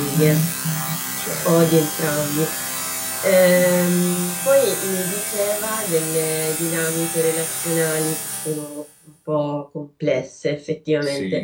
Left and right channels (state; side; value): identical; both; correlation 1.00